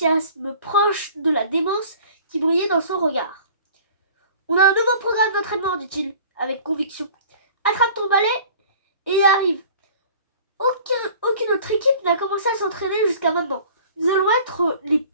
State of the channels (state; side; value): inverted; both; correlation -0.47